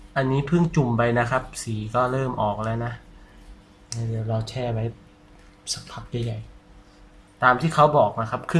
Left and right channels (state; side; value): identical; both; correlation 1.00